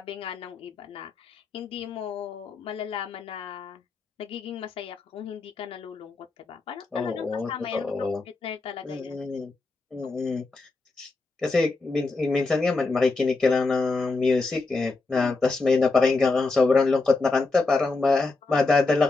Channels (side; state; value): right; quieter; 3.7 dB